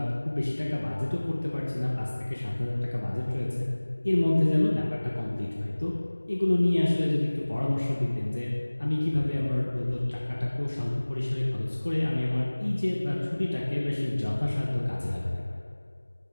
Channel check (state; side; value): inverted; both; correlation -1.00